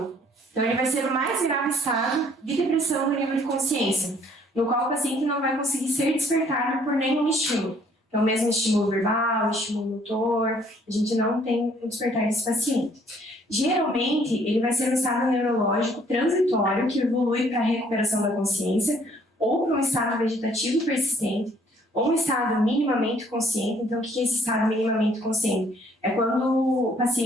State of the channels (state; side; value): normal; both; correlation 0.62